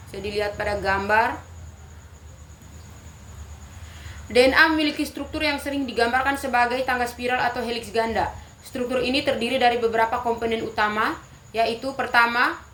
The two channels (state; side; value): identical; both; correlation 1.00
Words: bisa dilihat pada gambar. DNA memiliki struktur yang sering digambarkan sebagai tangga spiral atau heliks ganda. Struktur ini terdiri dari beberapa komponen utama, yaitu pertama,